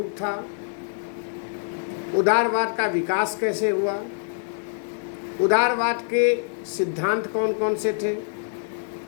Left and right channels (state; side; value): silent; right; digital silence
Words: था, उदारवाद का विकास कैसे हुआ, उदारवाद के सिद्धांत कौन कौन से थे,